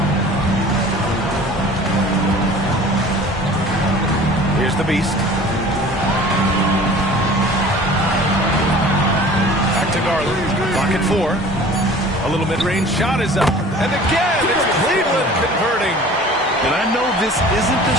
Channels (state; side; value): normal; both; correlation 0.45